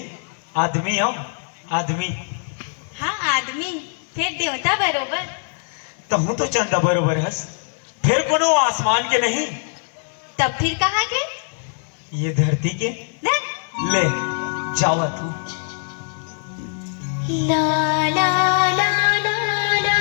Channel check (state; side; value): silent; right; 56 dB below the other